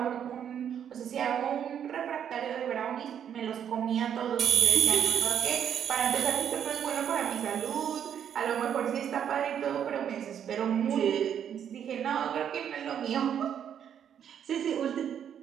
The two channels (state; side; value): quieter; left; 8.9 dB